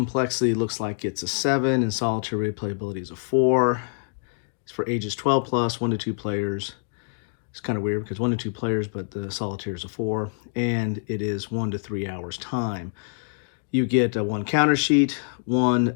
looks like it's a 7, and solitary replayability is a 4. It's for ages 12 plus, 1 to 2 players. It's kind of weird because 1 to 2 players, but the solitaire is a 4, and it is 1 to 3 hours time. You get one counter sheet,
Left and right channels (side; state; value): right; silent; digital silence